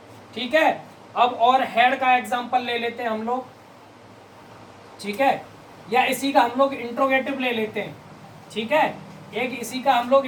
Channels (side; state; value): both; identical; correlation 1.00